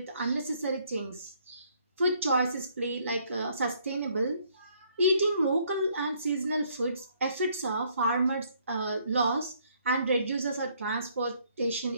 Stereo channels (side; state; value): both; inverted; correlation -0.66